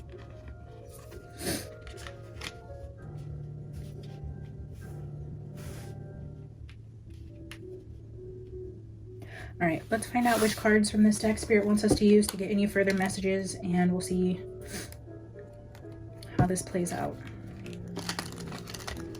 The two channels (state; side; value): identical; both; correlation 1.00